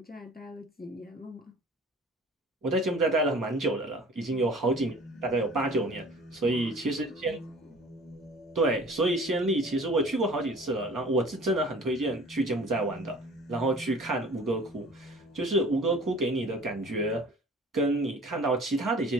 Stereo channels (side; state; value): both; normal; correlation 0.46